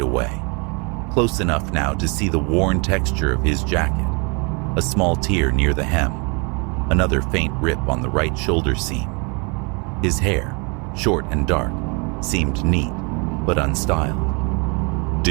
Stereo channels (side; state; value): left; quieter; 32.6 dB